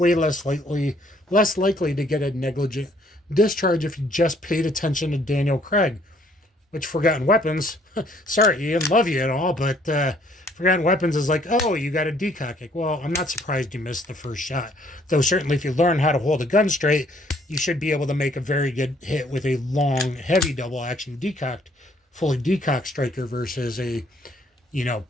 less likely to get a negligent discharge if you just paid attention to Daniel Craig. Which Forgotten Weapons, sorry Ian, love you and all, but Forgotten Weapons is like, oh, you got a decock kick. Well, I'm not surprised you missed the first shot. Though certainly if you learn how to hold a gun straight, you should be able to make a very good hit with a long, heavy double action fully decocked striker versus a,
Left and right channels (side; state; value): both; normal; correlation 0.63